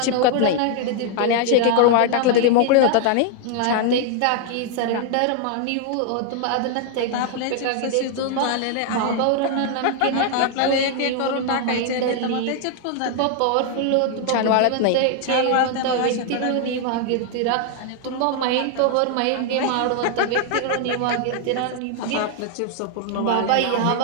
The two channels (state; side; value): different; both; correlation 0.00